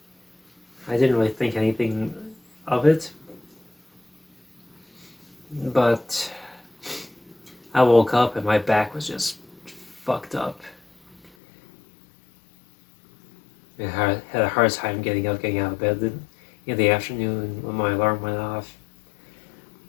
I didn't really think anything of it. But I woke up and my back was just fucked up. I had a hard time getting out of bed in the afternoon when my alarm went off.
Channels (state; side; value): drops out; right; at 11.3 s